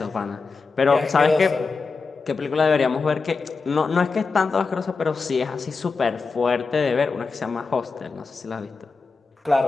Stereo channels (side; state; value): right; quieter; 4.4 dB